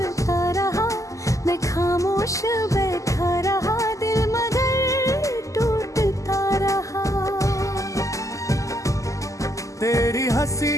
रहा, मैं खामोश बैठा रहा, दिल मगर टूटता रहा। तेरी हंसी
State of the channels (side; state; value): right; late; 0.16 ms